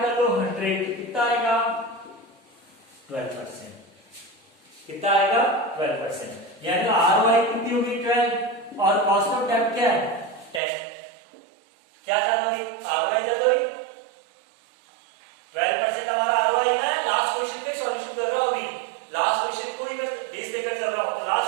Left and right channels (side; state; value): left; drops out; at 10.6 s